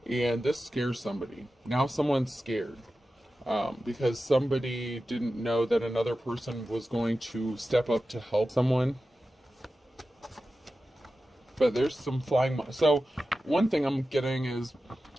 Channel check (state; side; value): normal; both; correlation 0.93